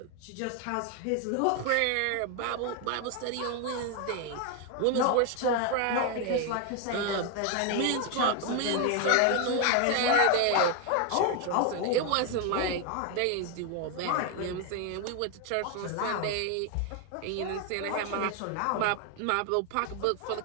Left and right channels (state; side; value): different; both; correlation 0.01